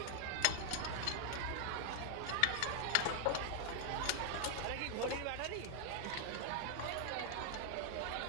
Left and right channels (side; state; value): both; different; correlation 0.00